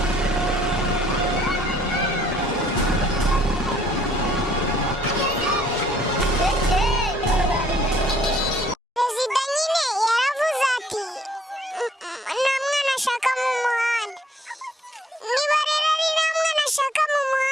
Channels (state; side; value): normal; both; correlation 0.64